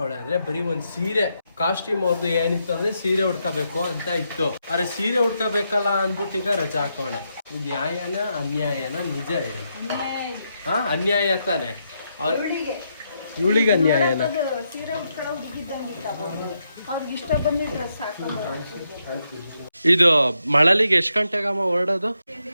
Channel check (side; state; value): both; inverted; correlation -0.81